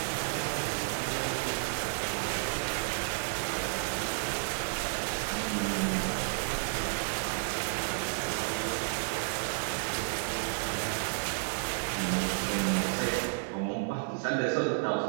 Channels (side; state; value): left; silent; digital silence